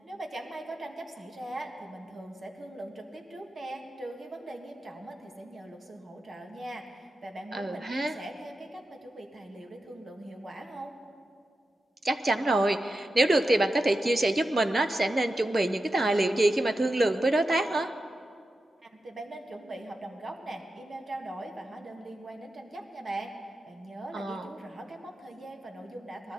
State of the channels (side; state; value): both; normal; correlation 0.91